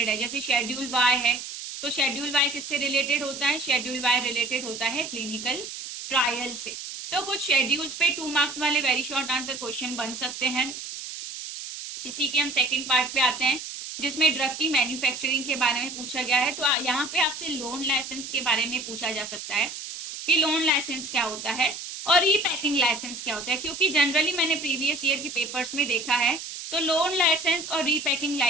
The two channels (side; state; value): right; noise; hiss, 9 dB below the sound